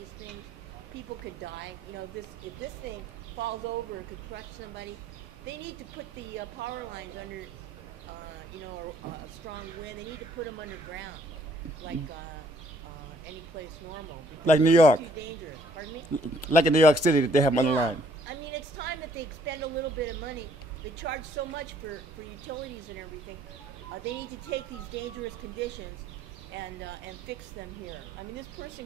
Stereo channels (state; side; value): normal; both; correlation 0.63